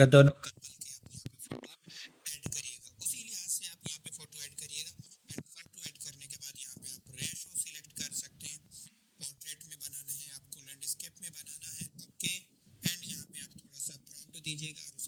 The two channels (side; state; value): both; identical; correlation 1.00